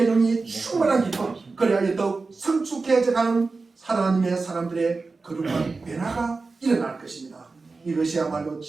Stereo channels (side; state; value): left; quieter; 4.0 dB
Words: 영이 충만한 기쁨, 그래야 더욱 성숙해져가는 하나님의 사람들의 거룩한 변화가 일어날 것입니다. 이것이야말로